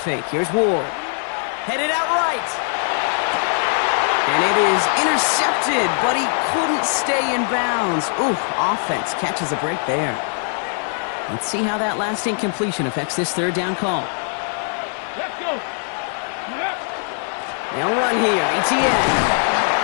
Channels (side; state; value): right; silent; 57 dB below the other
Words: here's Ward. Headed out right. And it is intercepted, but he couldn't stay in bounds. Ooh, offense catches a break there. Let's see how that last incompletion affects this 3rd down call. Let's go. They'll run here, ETN.